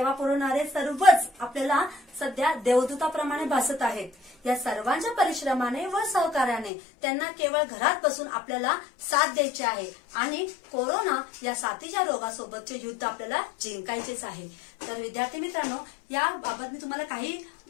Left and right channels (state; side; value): drops out; right; at 6.7 s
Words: पुरवणारे सर्वच आपल्याला सध्या देवदूताप्रमाणे भासत आहेत। या सर्वांच्या परिश्रमाने व सहकार्याने त्यांना केवळ घरात बसून आपल्याला साथ द्यायची आहे आणि कोरोना या साथीच्या रोगासोबतचे युद्ध आपल्याला जिंकायचेच आहे। तर विद्यार्थी मित्रांनो, याबाबत मी तुम्हाला काही